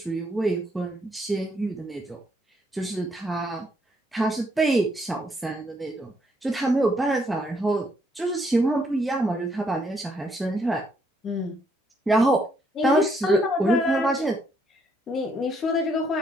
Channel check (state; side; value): normal; both; correlation 0.72